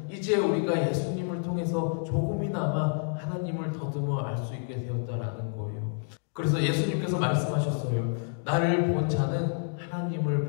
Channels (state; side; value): silent; right; digital silence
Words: 이제 우리가 예수님을 통해서 조금이나마 하나님을 더듬어 알 수 있게 되었다라는 거예요. 그래서 예수님께서 말씀하셨어요. 나를 본 자는